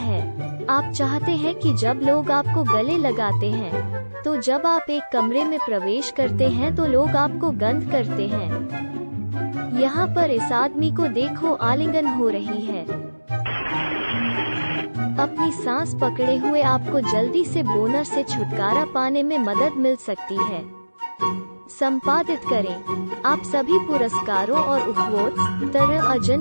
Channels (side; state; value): both; inverted; correlation -1.00